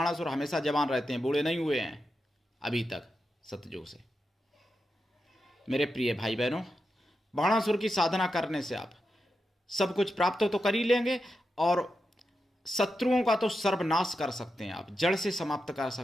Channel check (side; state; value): both; normal; correlation 0.88